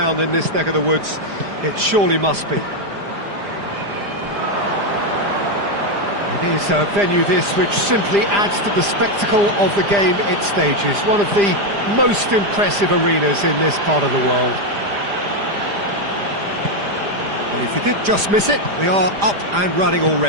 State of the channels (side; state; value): left; late; 5.0 ms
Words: in this neck of the woods. It surely must be. It is a venue this which simply adds to the spectacle of the game it stages. One of the most impressive arenas in this part of the world. Well, if you did just miss it, we are up and running